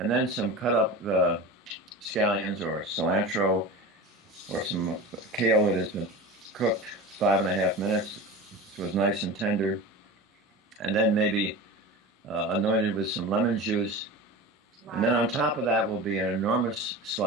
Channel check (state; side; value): normal; both; correlation 0.31